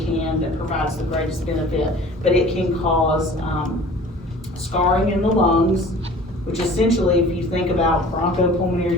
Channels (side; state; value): both; normal; correlation 0.45